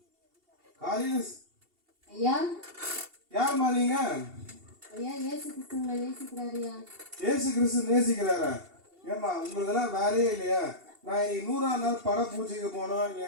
காலையில ஐயா யாருமா நீங்க? ஐயா இயேசு கிறிஸ்துவை நேசிக்கிறாரியா? இயேசு கிறிஸ்து நேசிக்கிறாரா? ஏமா உங்களுக்கெல்லாம் வேலையே இல்லையா? நான் இன்னைக்கு 100ஆவது நாள் பட பூஜைக்கு போனோம்.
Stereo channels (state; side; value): late; left; 2.7 ms